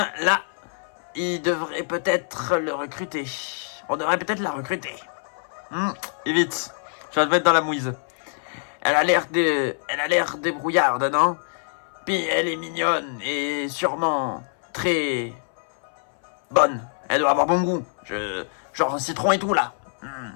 là, il devrait peut-être le recruter. On devrait peut-être la recruter. Et vite, tu vas te mettre dans la mouise. Elle a l'air débrouillarde, non? Puis elle est mignonne et sûrement très bonne. Elle doit avoir bon goût. Genre citron et tout là.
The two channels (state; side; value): silent; right; 62 dB below the other